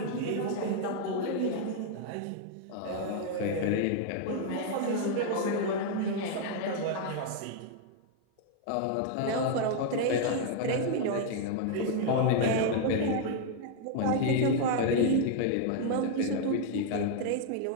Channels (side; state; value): both; different; correlation 0.00